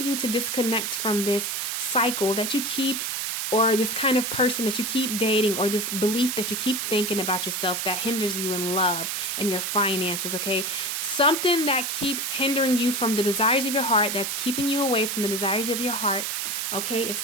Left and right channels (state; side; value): noise; right; hiss, 2 dB below the sound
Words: to disconnect from this cycle that you keep, or this kind of person that you keep dating, or this belief that you keep thinking about yourself that hinders you in love and your finances, okay? Something that keeps hindering you from the desires of your heart, that's keeping you away from the desires of your heart, okay? It's